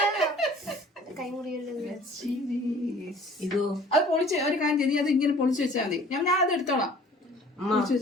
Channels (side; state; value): both; normal; correlation 0.51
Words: ഇതോ അത് പൊളിച്ച് ഒരു കാര്യം ചെയ്ത് അത് ഇങ്ങനെ പൊളിച്ച് വെച്ചാൽ മതി. ഞാൻ അത് എടുത്തോളാം.